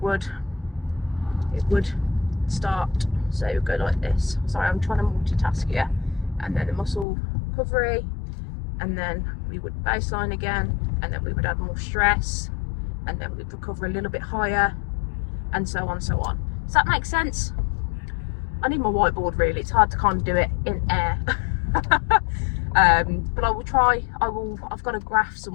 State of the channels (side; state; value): right; drops out; at 7.1 s